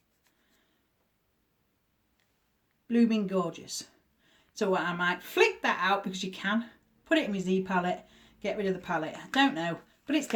Blooming gorgeous. So I might flick that out because you can. Put it in my Z palette. Get rid of the palette. I don't know. But it's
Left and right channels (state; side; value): identical; both; correlation 1.00